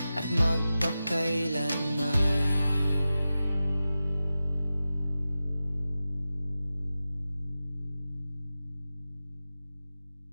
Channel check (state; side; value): inverted; both; correlation -0.94